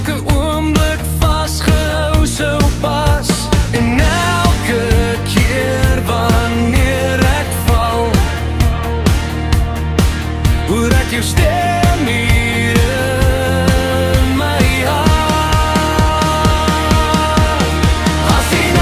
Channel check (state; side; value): identical; both; correlation 1.00